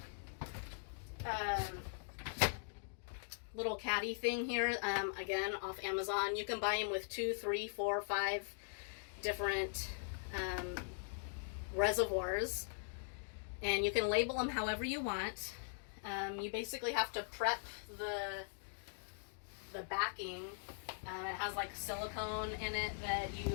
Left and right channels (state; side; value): silent; right; digital silence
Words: little caddy thing here, again off Amazon. You can buy them with 2, 3, 4, 5 different reservoirs, and you can label them however you want. You basically have to prep the backing. It has like silicone in it that